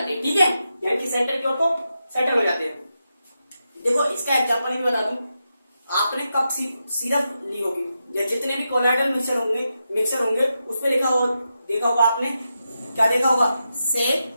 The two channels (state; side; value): inverted; both; correlation -0.87